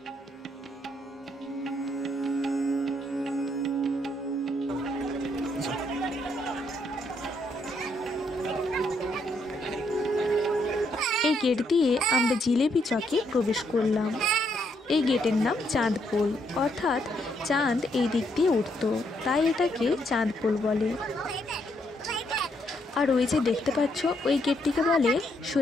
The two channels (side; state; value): both; normal; correlation 0.74